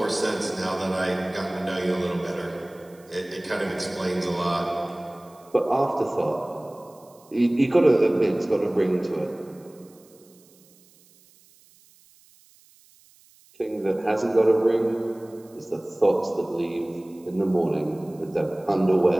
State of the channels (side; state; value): right; noise; hiss, 29 dB below the sound